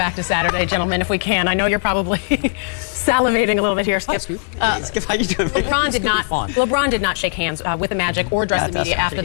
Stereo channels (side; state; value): right; silent; digital silence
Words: to Saturday, gentlemen, if we can. I know you're probably salivating a little bit here, Skip. Skip, how you doing? LeBron did not shake hands with the Magic or address the media after